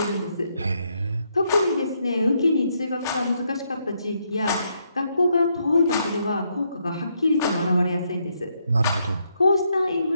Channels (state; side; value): inverted; both; correlation -0.76